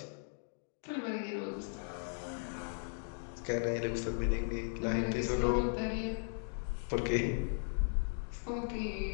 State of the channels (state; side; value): silent; right; digital silence